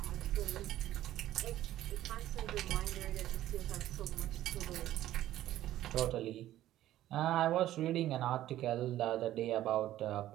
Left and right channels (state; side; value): quieter; left; 13.6 dB